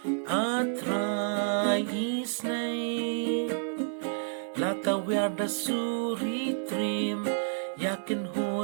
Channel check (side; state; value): left; silent; digital silence